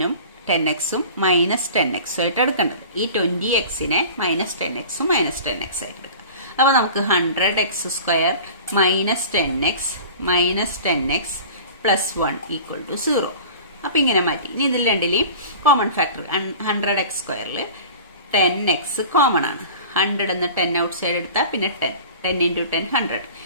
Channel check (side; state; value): both; inverted; correlation -0.39